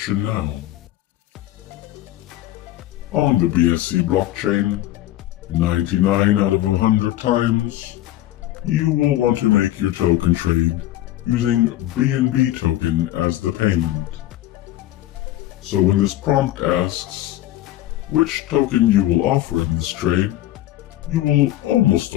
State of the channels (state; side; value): quieter; right; 14.5 dB